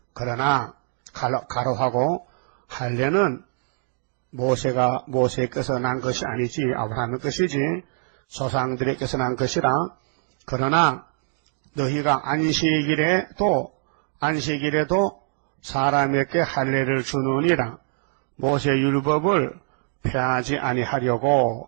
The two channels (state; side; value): silent; left; digital silence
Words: 그러나 가로하고 할례는 모세께서 난 것이 아니지 아브라함의 것이지 조상들에게서 난 것이라. 그러나 너희가 안식일에도 사람에게 할례를 주느니라. 모세 율법을 폐하지